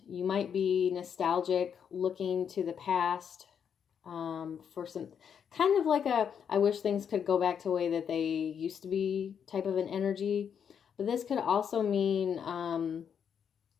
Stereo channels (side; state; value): right; quieter; 7.7 dB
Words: you might be nostalgic, looking to the past for some kind of like I wish things could go back to the way that they used to be type of an energy. But this could also mean,